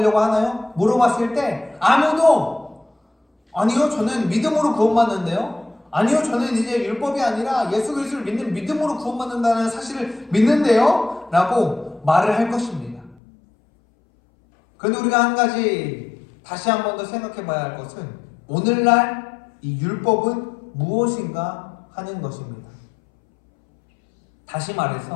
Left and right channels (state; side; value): drops out; right; at 13.2 s